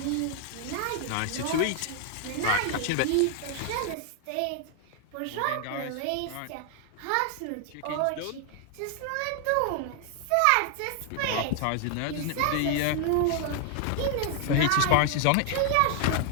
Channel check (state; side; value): different; both; correlation 0.00